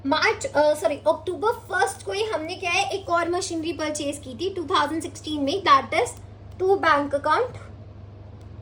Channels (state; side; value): identical; both; correlation 1.00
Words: अक्टूबर 1 को ही हमने क्या है, एक और मशीनरी परचेज की थी 2016 में, that is to bank account.